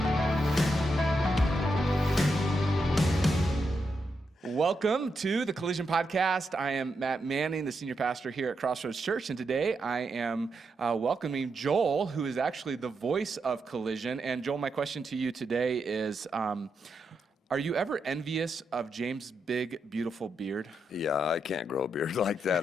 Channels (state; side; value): normal; both; correlation 0.83